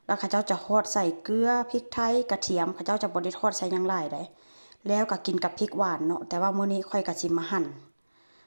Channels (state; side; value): inverted; both; correlation -1.00